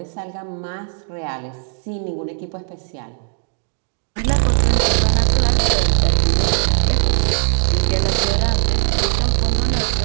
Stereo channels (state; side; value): silent; left; digital silence